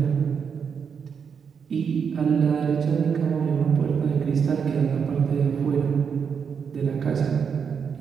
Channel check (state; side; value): quieter; left; 6.6 dB